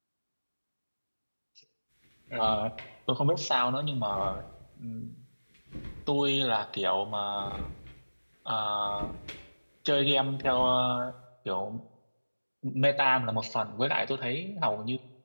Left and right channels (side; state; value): both; inverted; correlation -1.00